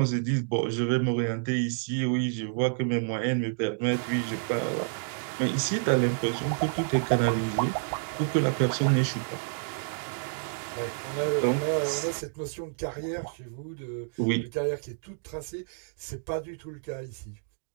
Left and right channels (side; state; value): left; silent; digital silence